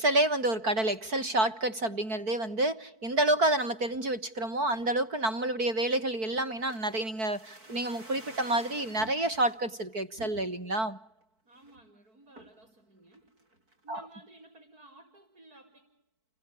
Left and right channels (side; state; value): left; late; 4.5 ms